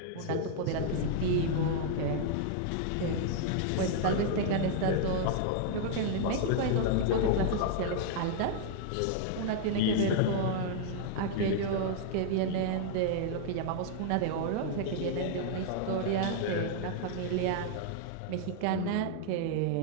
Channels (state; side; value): different; both; correlation -0.01